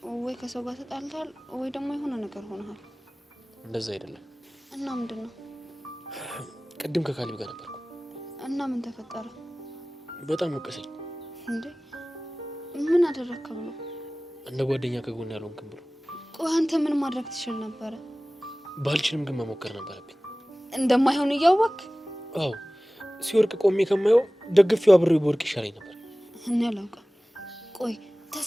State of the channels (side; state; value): both; normal; correlation 0.98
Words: ወይ ከሰው ጋር ተጣልተሃል ወይ ደግሞ የሆነ ነገር ሆነሃል። እንደዛ አይደለም። እና ምንድን ነው? ቅድም ከካሊብ ጋር ነበርኩ። እና ምን ተፈጠረ? በጣም ወቀሰኝ። እንዴ ምን አደረግክ ብሎ? እንደ ጓደኛ ከጎን ያልሆንክም ብሎ። ቆይ አንተ ምን ማድረግ ትችል ነበረ? ባልችልም ግን መሞከር ነበረብኝ። እንደማይሆን እያወቅህ? አዎ ሲወርቅ ቆሜ ከማየው ደግፌው አብሬው በወርቅ ይሻለኝ ነበር። እኔ አላውቅም። ቆይ